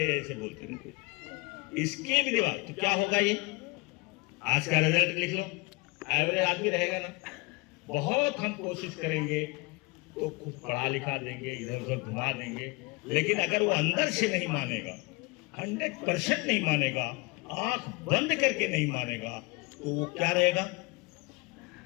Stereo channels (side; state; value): right; quieter; 25.5 dB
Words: ऐसे बोलते हैं, इसके भी दिमाग तो क्या होगा। ये आज का रिजल्ट लिख लो, एवरेज आदमी रहेगा ना। बहुत हम कोशिश करेंगे तो कुछ पढ़ा लिखा देंगे, इधर उधर घुमा देंगे, लेकिन अगर वो अंदर से नहीं मानेगा, 100% नहीं मानेगा, आंख बंद करके नहीं मानेगा, तो वो क्या रहेगा,